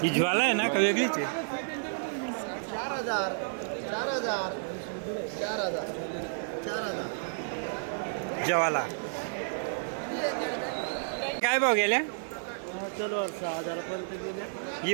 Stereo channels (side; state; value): left; silent; digital silence